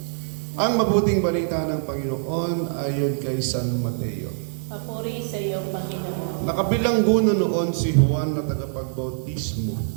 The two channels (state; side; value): silent; left; digital silence